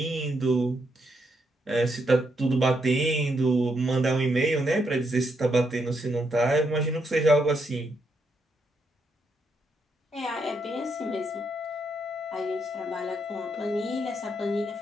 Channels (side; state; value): both; normal; correlation 0.78